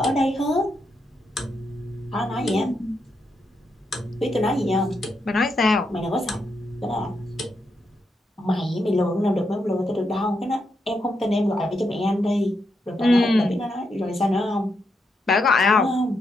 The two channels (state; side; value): normal; both; correlation 0.82